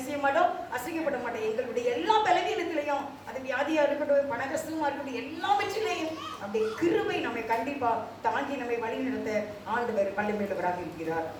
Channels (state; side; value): identical; both; correlation 1.00